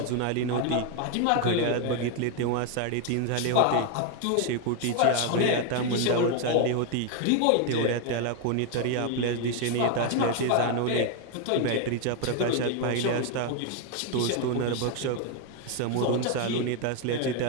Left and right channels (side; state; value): both; different; correlation 0.01